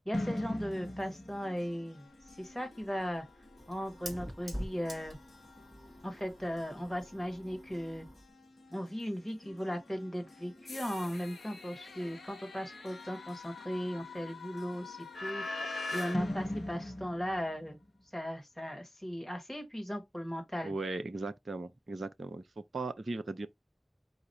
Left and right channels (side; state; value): both; normal; correlation 0.96